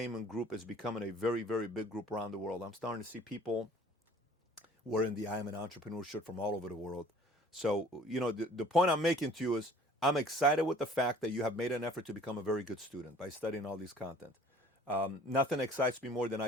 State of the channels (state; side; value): normal; both; correlation 0.52